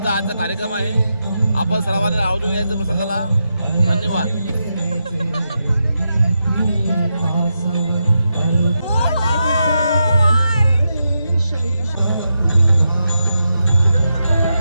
आजचा कार्यक्रम आहे. आपण सर्वांना आवर्जून यायचं प्रसंगाला. धन्यवाद.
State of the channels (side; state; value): both; inverted; correlation -0.86